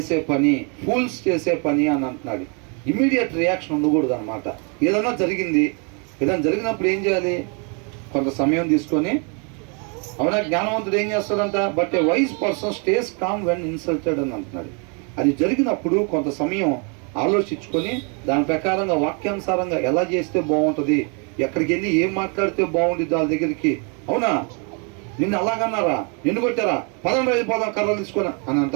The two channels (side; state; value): left; quieter; 36.3 dB